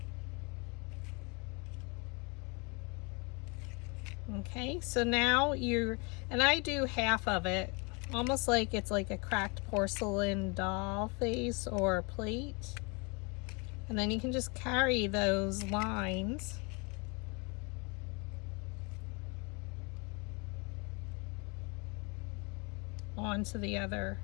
Okay, so now and I do half of it, almost like it's like a cracked porcelain doll face or plate. And then you can just carry those lines onto the other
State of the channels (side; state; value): right; quieter; 31.0 dB